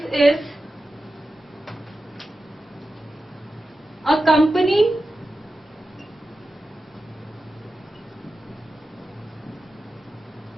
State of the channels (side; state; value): both; normal; correlation 0.93